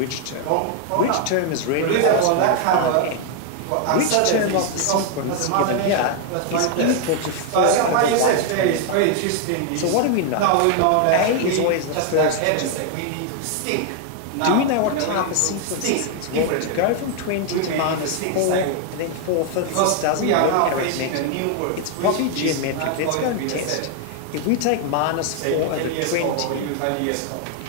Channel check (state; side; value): different; both; correlation 0.00